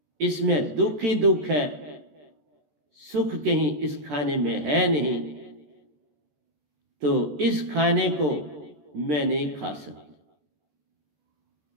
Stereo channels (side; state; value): left; late; 14 ms